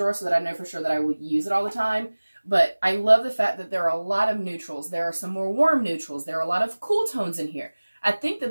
so that I know for sure that I will use it all the time. But I love the fact that there are a lot of neutrals. There are some more warm neutrals. There are a lot of cool tones in here. I think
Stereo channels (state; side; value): inverted; both; correlation -1.00